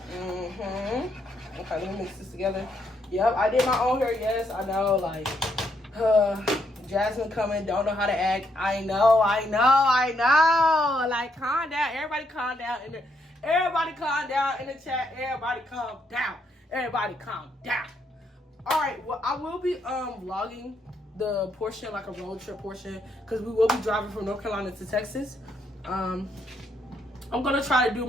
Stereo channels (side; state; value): both; normal; correlation 0.75